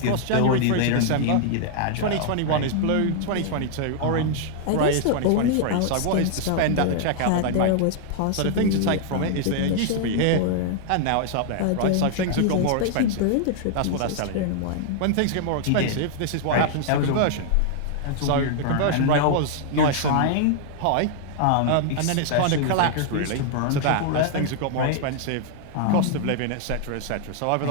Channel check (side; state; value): both; different; correlation -0.01